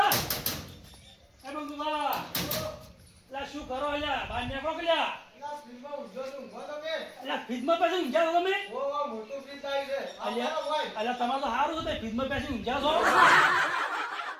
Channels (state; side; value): identical; both; correlation 1.00